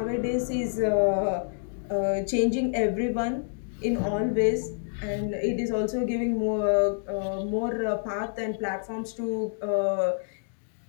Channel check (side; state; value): right; silent; digital silence